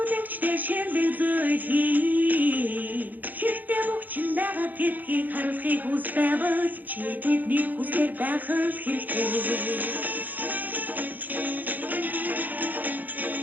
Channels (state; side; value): late; left; 0.083 ms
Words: шилдэг зүйл хий. Хэрэгтэй мөчн байгаа гэдгийг харуулахыг хүс байвал чи тэдний хүслээр байх л хэрэгтэй.